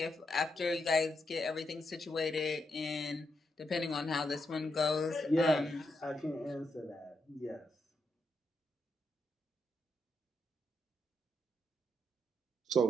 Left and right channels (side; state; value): both; normal; correlation 0.81